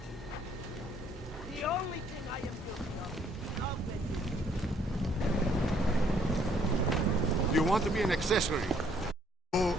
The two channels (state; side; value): normal; both; correlation 0.65